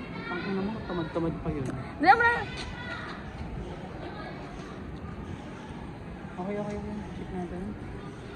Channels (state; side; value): identical; both; correlation 1.00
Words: Ang ina mo, tamad-tamad pa yun. Hindi mo na. Okay. Check natin.